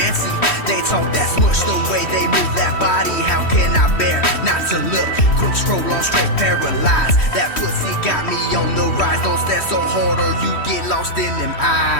They talk that smush, the way they move that body. How can I bear not to look? Quick scroll on straight paralyzed. That pussy got me on the rise. Don't stare so hard or you get lost in them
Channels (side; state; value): right; late; 3.1 ms